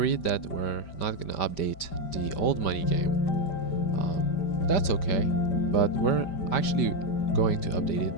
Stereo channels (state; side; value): late; right; 5.1 ms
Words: that we're not gonna update the old money game, that's okay. But we're actually going to update it